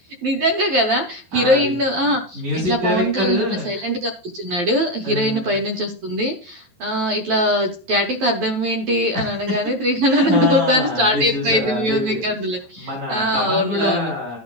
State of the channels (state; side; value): late; left; 12 ms